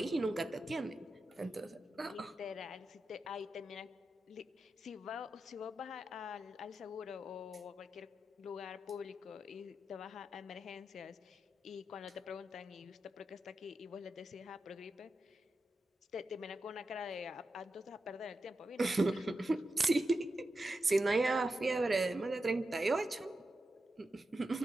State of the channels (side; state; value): both; normal; correlation 0.89